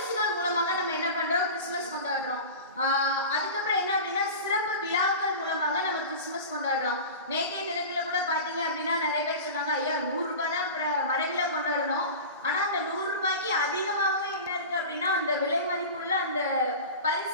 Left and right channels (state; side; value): inverted; both; correlation -0.31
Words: மூலமாக நம்ம என்ன பண்றோம், கிறிஸ்துமஸ் கொண்டாடுறோம். அதுக்கப்புறம் என்ன அப்படின்னா, சிறப்பு விழாக்கள் மூலமாக நம்ம கிறிஸ்துமஸ் கொண்டாடுறோம். நேற்றைய தினத்துல கூட பாத்தீங்க அப்படின்னா நிறைய பேர் சொன்னாங்க, ஐயா 100 ரூபாய் தான் மரவிழா கொண்டாடணும், ஆனா அந்த 100 ரூபாய்க்கு அதிகமாகவே என்ன இருக்கு அப்படின்னா அந்த விலை மதிப்புள்ள அந்த